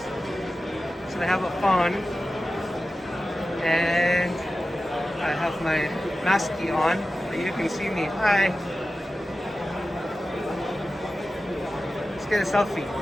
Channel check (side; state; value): both; normal; correlation 0.94